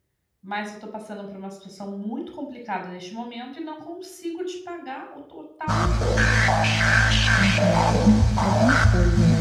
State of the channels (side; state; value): both; identical; correlation 1.00